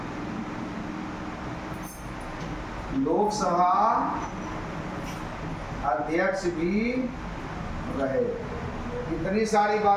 लोकसभा अध्यक्ष भी रहे। इतनी सारी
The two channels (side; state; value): both; identical; correlation 1.00